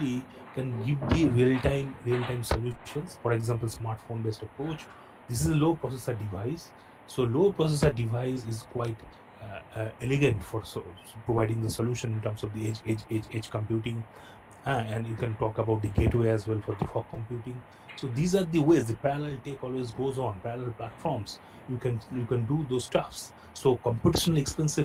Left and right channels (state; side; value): identical; both; correlation 1.00